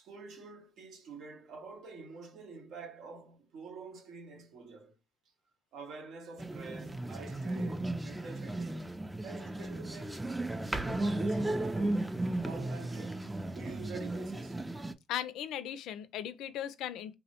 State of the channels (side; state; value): both; normal; correlation 0.86